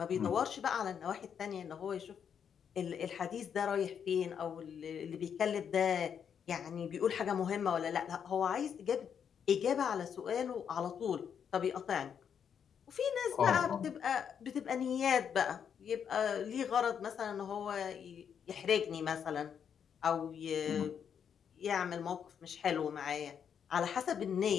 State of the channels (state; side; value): quieter; right; 7.8 dB